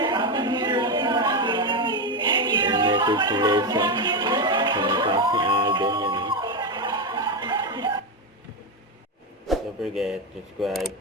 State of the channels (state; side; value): normal; both; correlation 0.11